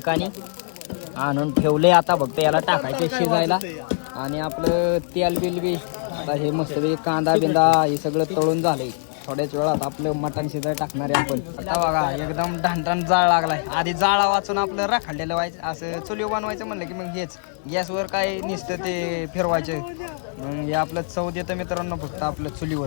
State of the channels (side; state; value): right; silent; digital silence